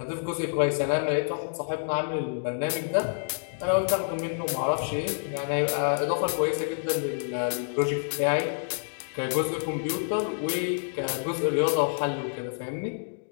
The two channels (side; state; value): right; silent; digital silence